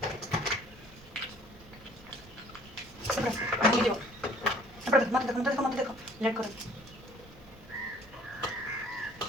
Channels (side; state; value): both; normal; correlation 0.55